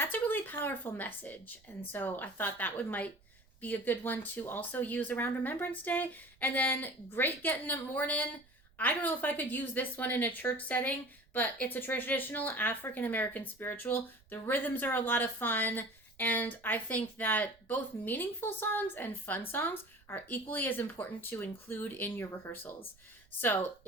a really powerful message. And so I thought that might be a good one to also use around Remembrance Day. And then Great Getting Up Morning. I don't know if I could use this one in a church setting, but it's a traditional African-American spiritual. The rhythms are a lot of fun. And I think that both meaningful songs and fun songs are equally as important to include in your rehearsals. So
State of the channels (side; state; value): right; noise; rumble, 30 dB below the sound